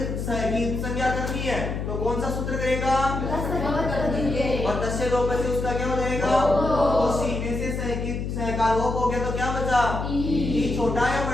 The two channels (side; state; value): left; noise; hum, 4 dB below the sound